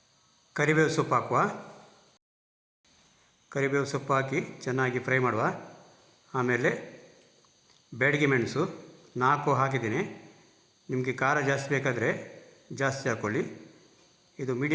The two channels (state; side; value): identical; both; correlation 1.00